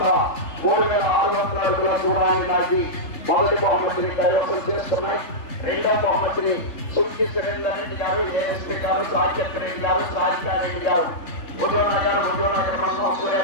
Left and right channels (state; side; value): late; right; 3.3 ms